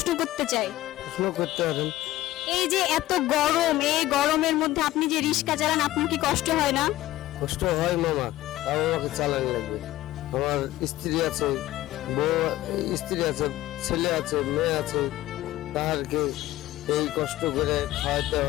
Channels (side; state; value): right; quieter; 15.8 dB